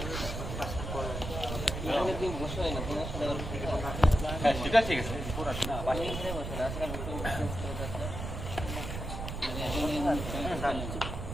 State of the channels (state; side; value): noise; right; rumble, 5 dB below the sound